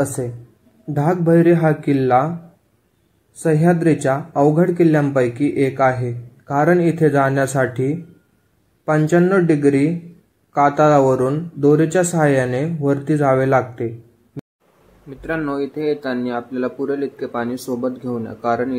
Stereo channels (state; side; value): identical; both; correlation 1.00